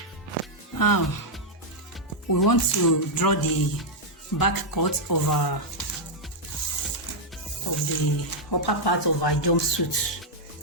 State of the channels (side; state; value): both; normal; correlation -0.03